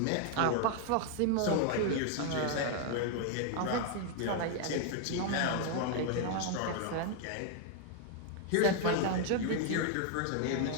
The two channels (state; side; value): different; both; correlation 0.00